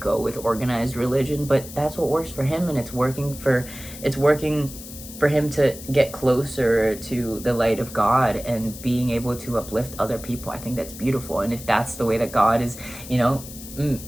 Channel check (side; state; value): left; noise; hiss, 14 dB below the sound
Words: with organized religion, but that's what works for him, and it's working for him to get closer to the light of God and being able to uplift other people. I think that's beautiful, and if that's the way that God is,